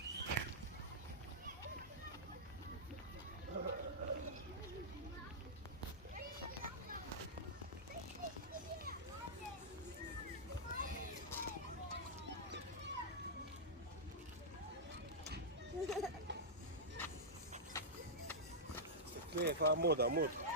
תקני, איפה עמוד, עמוד.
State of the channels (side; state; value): both; normal; correlation -0.10